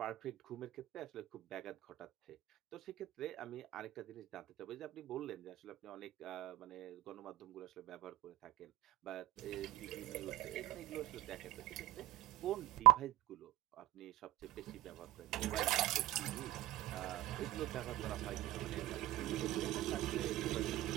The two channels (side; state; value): left; quieter; 16.7 dB